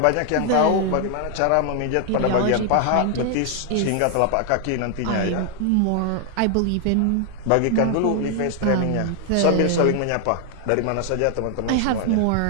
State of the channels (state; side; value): different; both; correlation 0.00